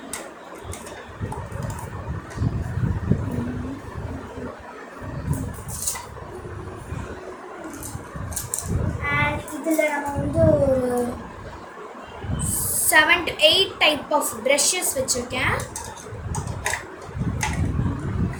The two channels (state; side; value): identical; both; correlation 1.00